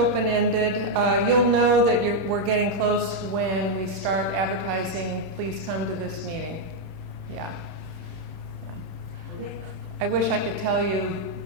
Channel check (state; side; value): late; left; 29 ms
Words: You'll know that we're getting close when we start advertising, please come to this meeting. Yeah. Okay. I wish I could tell you